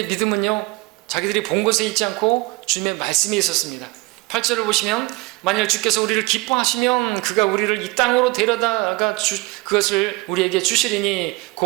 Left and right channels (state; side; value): quieter; left; 23.7 dB